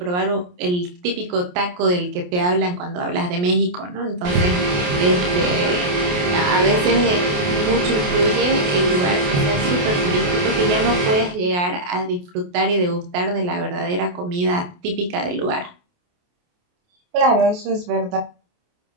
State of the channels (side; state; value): left; late; 28 ms